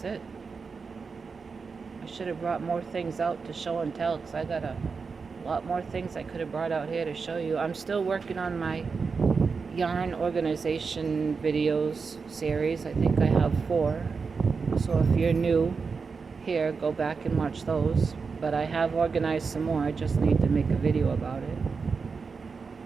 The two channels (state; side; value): quieter; left; 5.0 dB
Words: it. I should have brought more things out to show and tell, because I got a lot more things I could have brought out here to show you. I'm still working on my yarn organization videos series. I think I have 4. So if you're new here, go back and watch those. But I have organized some more. I just need to make a video about it.